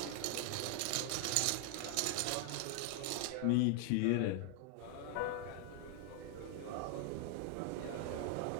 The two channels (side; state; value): both; different; correlation 0.00